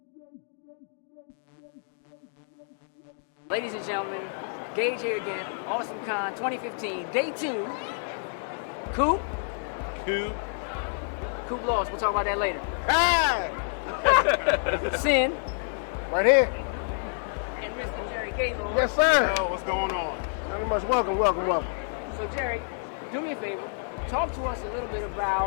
Ladies and gentlemen, Gage here again, Awesome Con 2015, day 2. Coop lost, we'll talk about that later. Hey! Sin. Right here. And Mr. Jerry Gaylord. Yes, sir. Yo, what's going on? Very much welcome. So Jerry, do me a favor, talk to us a little bit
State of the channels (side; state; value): right; silent; digital silence